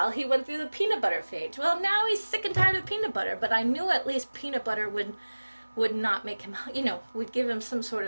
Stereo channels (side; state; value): both; inverted; correlation -1.00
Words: he went through the peanut butter phase. Well, now he's sick and tired of peanut butter, but I knew at least peanut butter would not make him, you know, would give him some sort